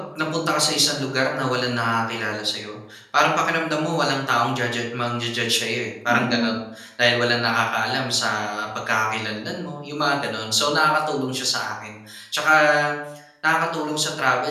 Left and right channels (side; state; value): both; identical; correlation 1.00